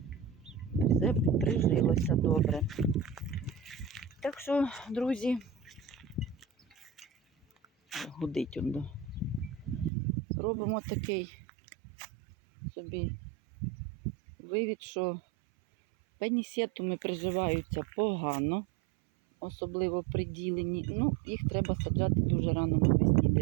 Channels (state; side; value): drops out; left; at 9.9 s